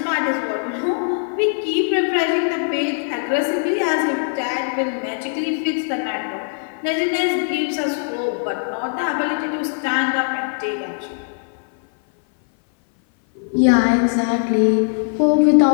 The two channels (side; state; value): right; silent; 58 dB below the other